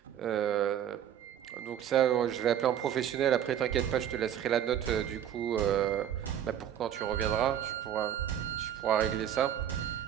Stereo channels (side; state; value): left; quieter; 10.0 dB